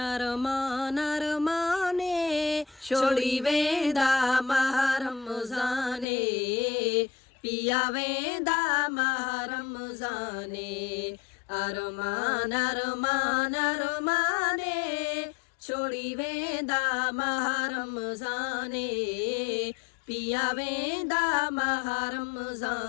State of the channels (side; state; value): right; drops out; at 6.1 s